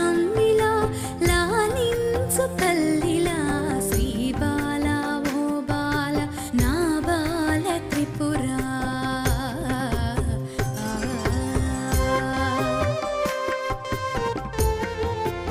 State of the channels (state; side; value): identical; both; correlation 1.00